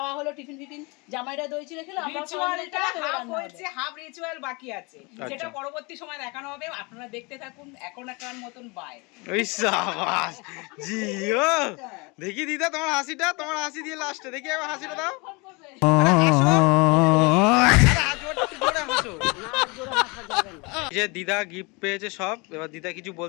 হলো, টিফিন ফিফিন, জামাইরা দই চিড়ে খেলো, আমরা রিচুয়ালটা হাফ হয়েছে, হাফ রিচুয়াল বাকি আছে, আচ্ছা। যেটা পরবর্তী সময় দেখানো হবে। আপনারা দেখতে থাকুন। এখন একার মতন বাই। ওই সাবাস জিও। দেখি দিদা তোমার হাসিটা, তোমার হাসি দিয়ে লাস্টে দেখি একবার হাসিটা দাও। ফোন করবে। আরে হাসো। আরে হাত জোড়া একটু জোরে হাসো। এই যে দিদা গিফট পেয়েছে সব, এবার দিদা কিছু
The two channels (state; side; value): quieter; right; 28.0 dB